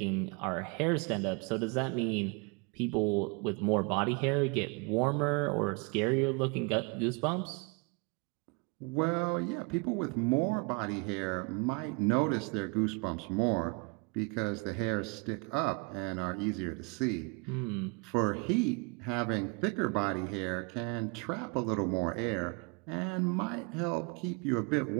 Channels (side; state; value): left; quieter; 30.9 dB